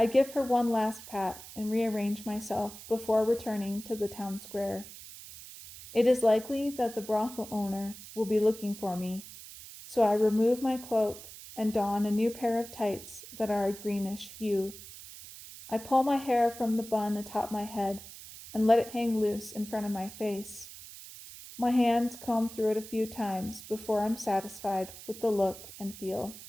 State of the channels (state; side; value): noise; right; hiss, 15 dB below the sound